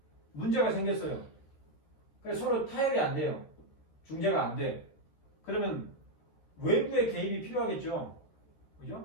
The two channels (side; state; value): right; late; 13 ms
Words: 문제가 생겼어요. 그래서 서로 타협이 안 돼요. 중재가 안 돼. 그러면 외부의 개입이 필요하겠죠.